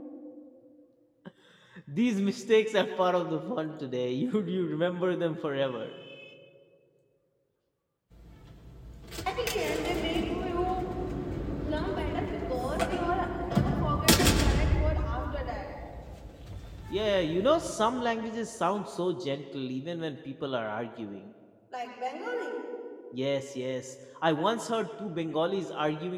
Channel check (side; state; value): both; identical; correlation 1.00